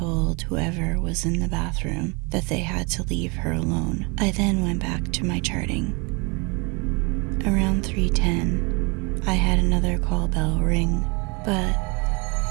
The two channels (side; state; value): left; quieter; 30.3 dB